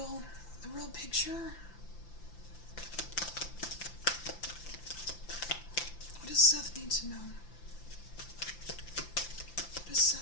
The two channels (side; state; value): right; late; 5.8 ms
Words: picture. What does Seth need to know? What does